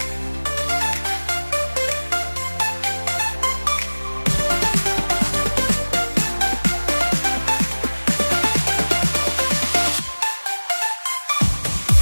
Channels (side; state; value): both; inverted; correlation -1.00